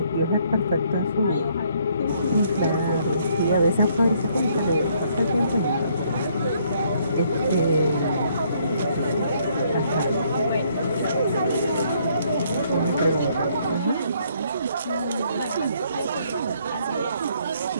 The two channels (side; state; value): both; inverted; correlation -0.67